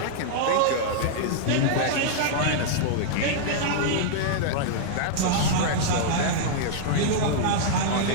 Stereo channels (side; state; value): both; different; correlation -0.01